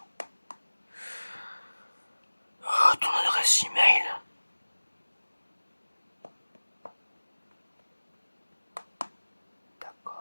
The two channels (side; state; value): both; inverted; correlation -1.00